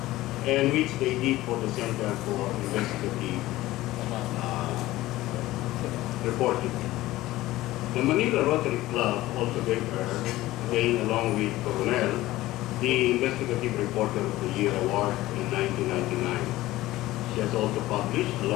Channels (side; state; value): right; quieter; 16.9 dB